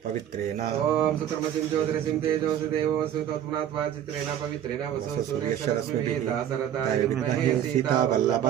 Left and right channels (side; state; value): left; quieter; 10.3 dB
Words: पवित्रेण ओम सुक्रमसिं ज्योतिरसिं तेजोसि देवोऽसु तत्पुनात्वा चित्रेण पवित्रेण वसो सूर्यशरश्मिभिः दाशरथाय विद्महे सीता